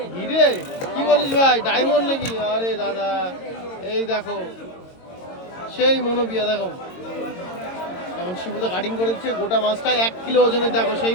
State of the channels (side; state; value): right; late; 22 ms